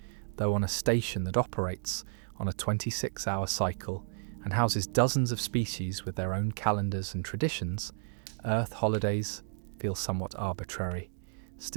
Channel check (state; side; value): silent; left; digital silence